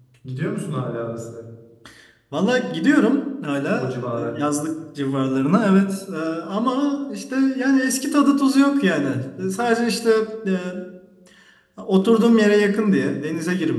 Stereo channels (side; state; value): both; identical; correlation 1.00